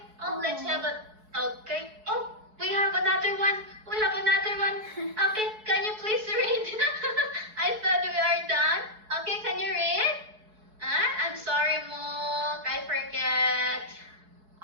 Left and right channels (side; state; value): left; late; 4.7 ms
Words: Oh, let's have a. Okay. Oh, we have another one. We have another one. Okay, can you please read? I thought we are done. Okay, can you read? I'm sorry, Mook. I forget.